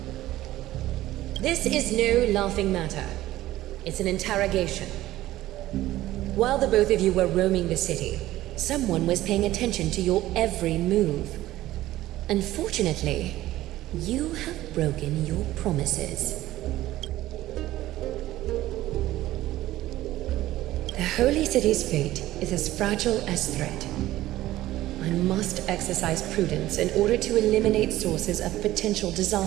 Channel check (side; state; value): left; quieter; 15.4 dB